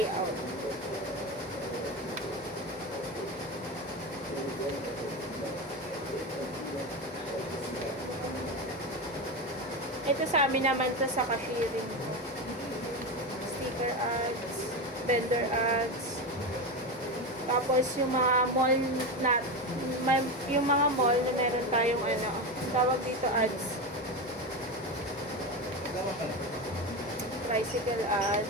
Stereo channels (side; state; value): both; normal; correlation 0.18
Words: Ito sa amin naman to sa cashiering ko. Sticker ads, vendor ads. Tapos yung mga mall na yung mga mall na meron tayong ano, tawag dito ads. Tricycle